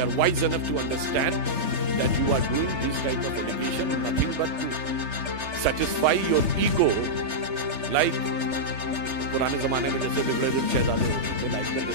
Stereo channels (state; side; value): late; left; 3.3 ms